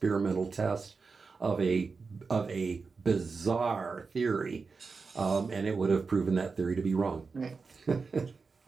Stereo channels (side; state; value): left; quieter; 4.7 dB